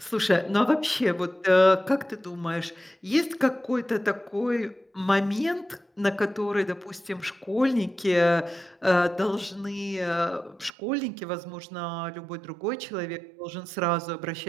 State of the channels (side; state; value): left; drops out; at 10.7 s